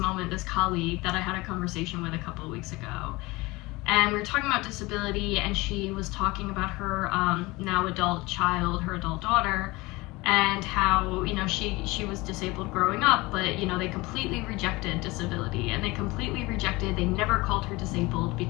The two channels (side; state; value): right; quieter; 22.3 dB